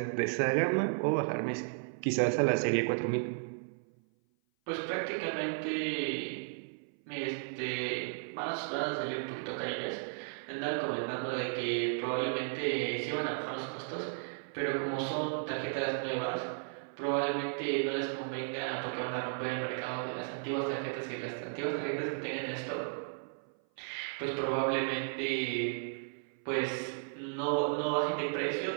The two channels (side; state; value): left; silent; 55 dB below the other